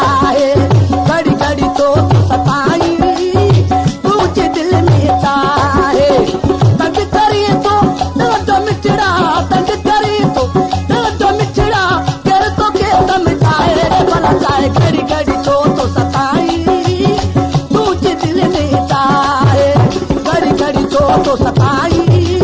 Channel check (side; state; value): both; identical; correlation 1.00